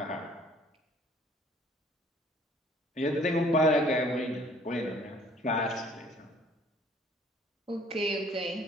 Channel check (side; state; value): both; normal; correlation 0.56